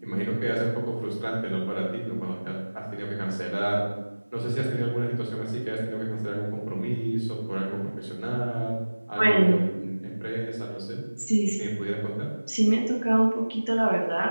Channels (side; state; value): both; inverted; correlation -1.00